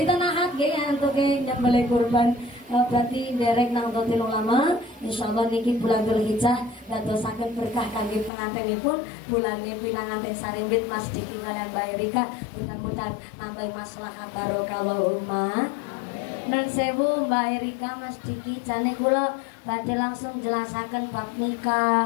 Ahad ya untuk nyembelih kurban. Berarti derek nang dotil ulama insyaallah niki bulan Dzulhijjah dadosaken berkah kangge pengantinipun bulannya pinanganten sarimbit Mas Diki lan Mbak Erika mudah-mudahan nambah maslahah barokah Allahumma. Nun sewu Mbak Erika Mas Diki jane kula badhe langsung jelasaken bab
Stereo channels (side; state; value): right; drops out; at 8.3 s